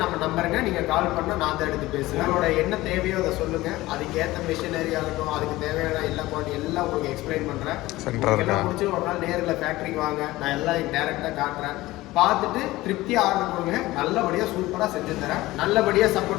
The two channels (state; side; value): quieter; right; 18.2 dB